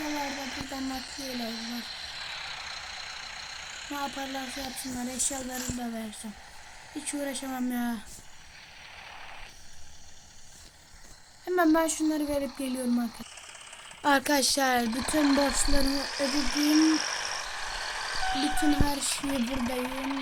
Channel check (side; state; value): both; identical; correlation 1.00